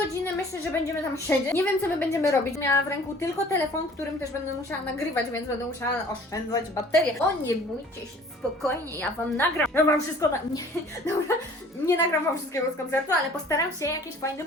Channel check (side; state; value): both; normal; correlation 0.50